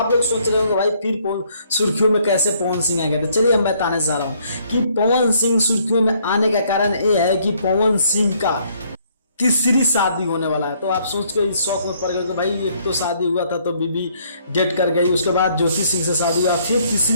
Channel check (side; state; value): both; inverted; correlation -0.66